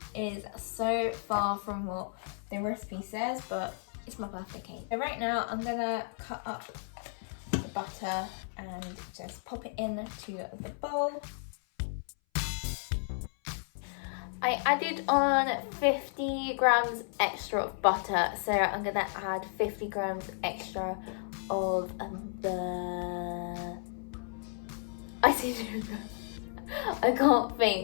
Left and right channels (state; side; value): silent; right; 56 dB below the other